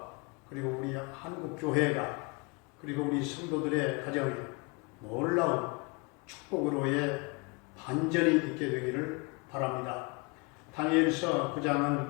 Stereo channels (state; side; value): quieter; right; 29.5 dB